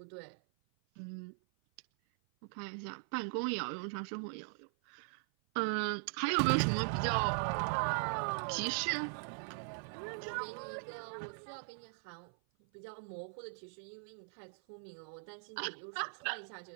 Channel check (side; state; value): left; silent; 51 dB below the other